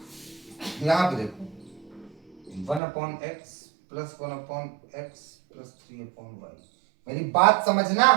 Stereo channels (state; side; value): drops out; left; at 2.8 s